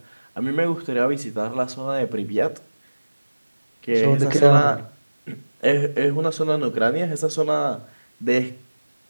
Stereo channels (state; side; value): inverted; both; correlation -1.00